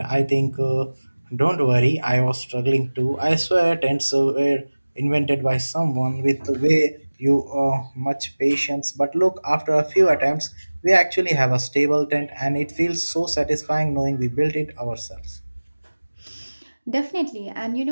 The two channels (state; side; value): inverted; both; correlation -1.00